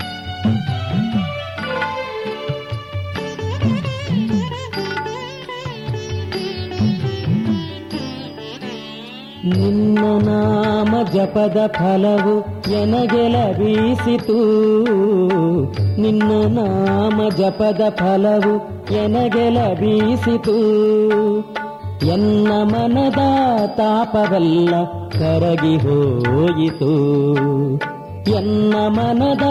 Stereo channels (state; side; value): identical; both; correlation 1.00